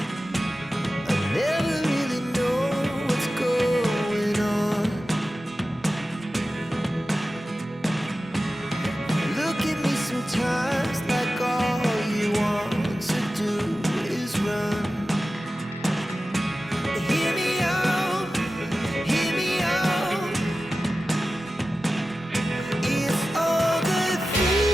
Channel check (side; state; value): both; normal; correlation 0.94